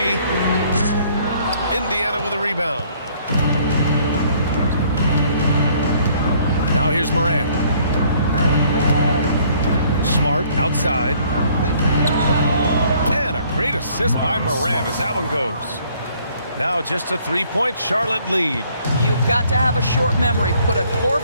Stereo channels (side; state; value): both; inverted; correlation -0.61